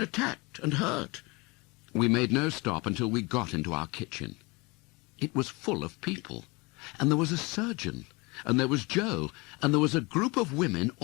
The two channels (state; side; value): quieter; right; 26.1 dB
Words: and hurt." We made no stop until we got into our kitchen. It was full of people, and there was a surgeon, and there was Joe, and there was a group of women